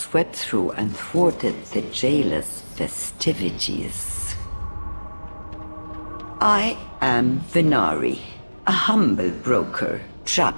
through and thwarted the jailer's festivities. I am Venari, a humble broker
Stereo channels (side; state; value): both; inverted; correlation -1.00